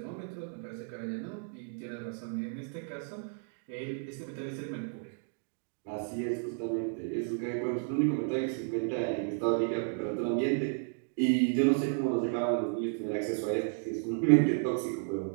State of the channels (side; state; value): left; silent; 56 dB below the other